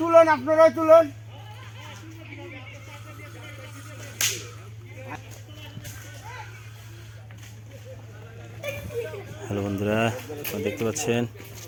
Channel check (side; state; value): both; identical; correlation 1.00